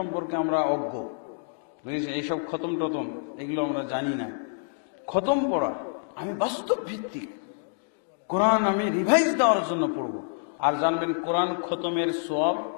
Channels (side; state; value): right; silent; digital silence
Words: আমরা অজ্ঞ, বুঝেছেন? এইসব খতম টতম এগুলো আমরা জানি না। খতম পড়া আমি বাস্তব ভিত্তিক, কোরআন আমি রিভাইজ দেওয়ার জন্য পড়ব। আর জানবেন, কোরআন খতমের সওয়াব